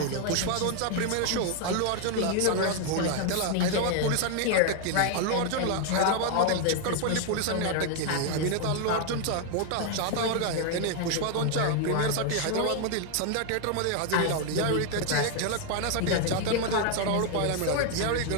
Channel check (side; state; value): both; different; correlation 0.00